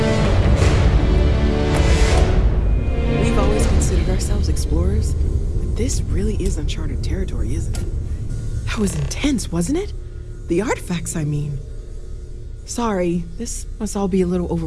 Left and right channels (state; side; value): identical; both; correlation 1.00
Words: We've always considered ourselves explorers, but this really is uncharted territory, isn't it? That was intense, wasn't it? The artifacts, I mean. Sorry, this must all be a little